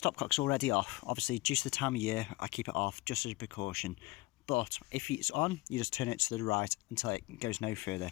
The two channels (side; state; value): right; quieter; 21.5 dB